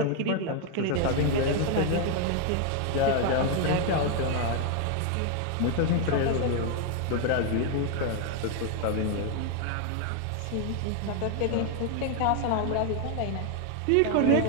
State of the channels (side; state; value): both; different; correlation 0.01